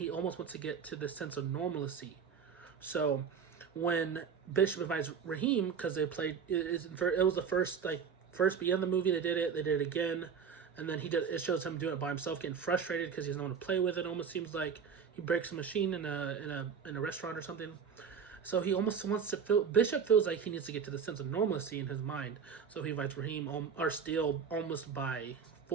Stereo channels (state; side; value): quieter; left; 6.6 dB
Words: almost wants to get to this sense of normalcy. So when Bishop invites Raheem, because they played, it was the first beginning of the movie. They did it again. And then it shows him doing it by himself, getting frustrated because he doesn't want to play with it. Almost seems like he breaks a machine in a restaurant or something. So he almost wants to feel. Bishop feels like he needs to get to the sense of normalcy in his mind. So he invites Raheem or Steele almost by